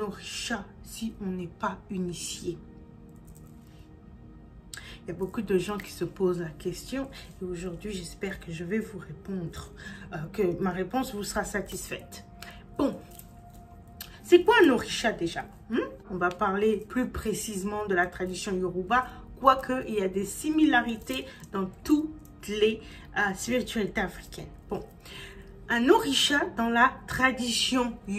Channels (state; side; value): identical; both; correlation 1.00